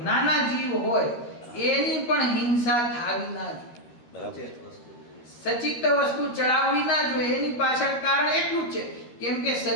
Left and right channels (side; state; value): right; late; 13 ms